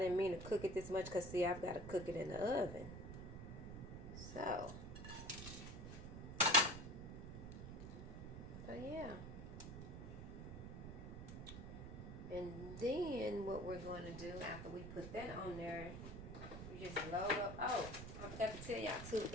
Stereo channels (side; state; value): right; noise; rumble, 8 dB below the sound